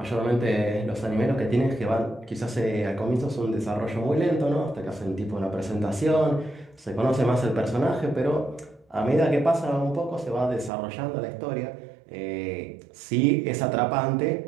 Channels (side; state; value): left; drops out; at 10.7 s